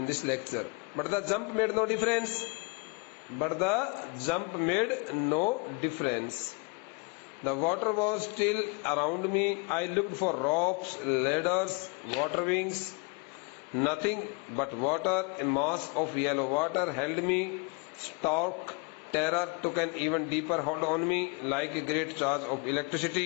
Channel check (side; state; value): right; quieter; 29.9 dB